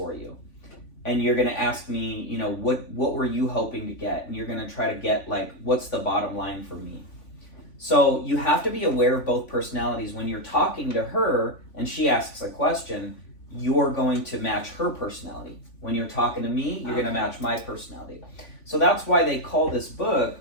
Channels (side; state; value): right; late; 3.5 ms